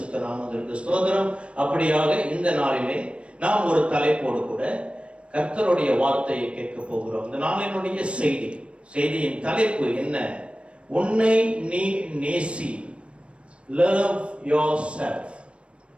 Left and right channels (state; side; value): late; left; 0.060 ms